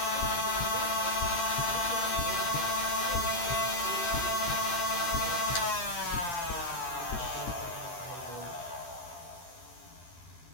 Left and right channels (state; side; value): late; right; 12 ms